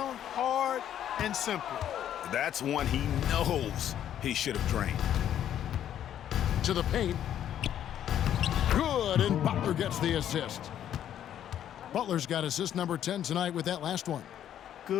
hard, and simple. That's one he knows he should have drained. To the paint. Good, and Butler gets the assist. Butler's got assist number 10 tonight with that last one.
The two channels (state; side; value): quieter; right; 10.5 dB